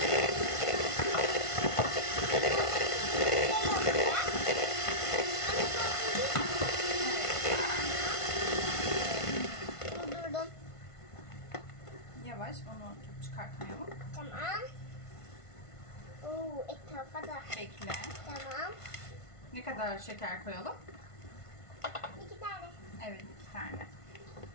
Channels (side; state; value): right; late; 1.5 ms